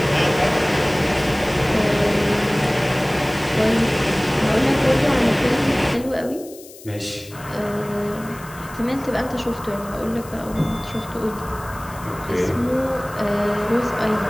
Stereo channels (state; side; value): noise; left; hiss, 19 dB below the sound